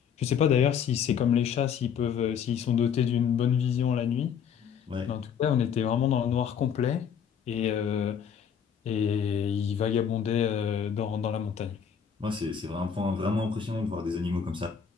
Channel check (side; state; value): right; quieter; 7.6 dB